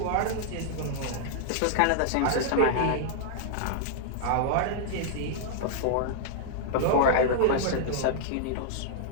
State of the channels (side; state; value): both; different; correlation -0.01